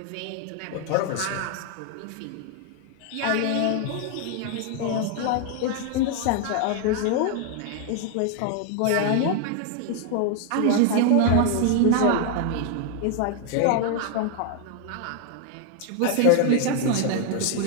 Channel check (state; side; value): different; both; correlation 0.00